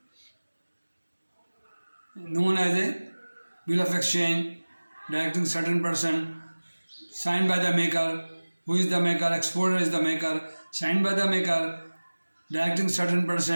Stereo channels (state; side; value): inverted; both; correlation -1.00